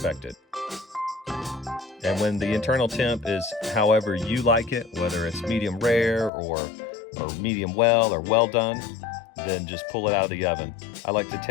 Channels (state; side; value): drops out; right; at 6.3 s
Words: And when the internal temp is however you like it, whether it's medium rare or medium well or well done, then just pull it out of the oven. I like to